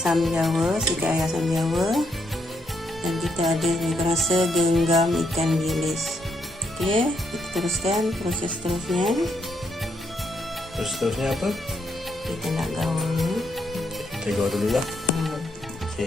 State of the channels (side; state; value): both; normal; correlation 0.76